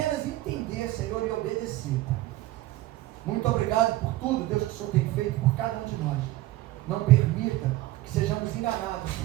entender, Senhor, e obedecer, Pai. Muito obrigado por tudo, Deus, que o Senhor tem feito por cada um de nós. Não permita que sejamos enganados,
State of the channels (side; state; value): left; quieter; 16.8 dB